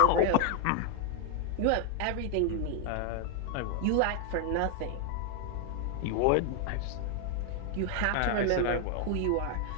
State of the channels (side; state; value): both; different; correlation 0.00